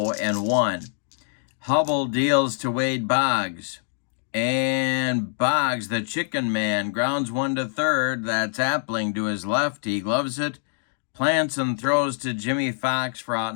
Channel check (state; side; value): silent; right; digital silence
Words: Hubbell deals to Wade Boggs. And Boggs, the chicken man, grounds one to third. That's Appling to his left. He gloves it, plants and throws to Jimmy Fox for out